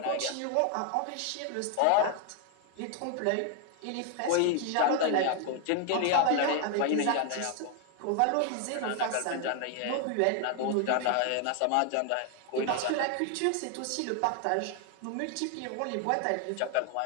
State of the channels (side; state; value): both; different; correlation 0.00